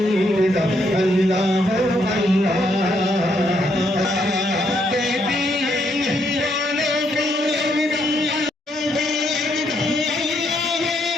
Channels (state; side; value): normal; both; correlation 0.74